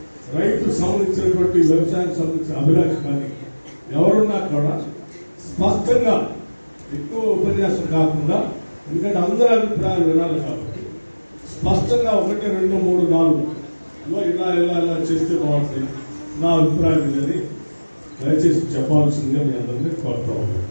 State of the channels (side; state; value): both; inverted; correlation -1.00